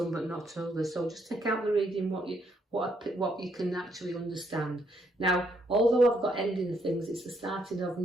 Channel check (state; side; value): normal; both; correlation 0.73